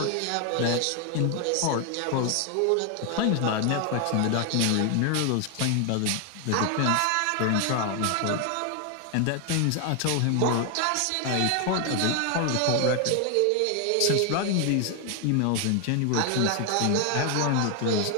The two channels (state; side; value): different; both; correlation 0.00